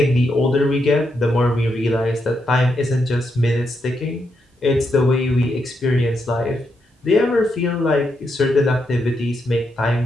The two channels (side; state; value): both; normal; correlation 0.81